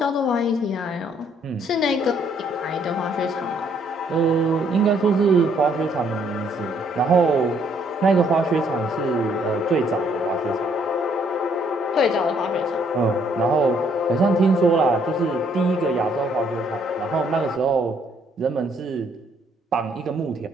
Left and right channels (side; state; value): both; normal; correlation 0.67